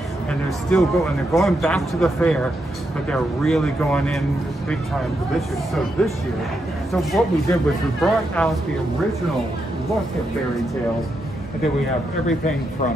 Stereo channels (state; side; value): normal; both; correlation 0.82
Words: And they're still going, they're going back to the fair, but they're really going in big time for this year. So what we did was we brought out the original look at Berry Tales, and then we have everything